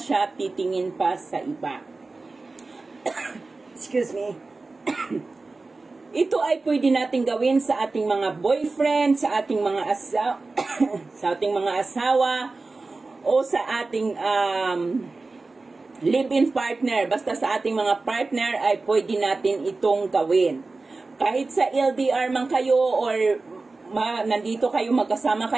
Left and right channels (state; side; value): quieter; left; 3.6 dB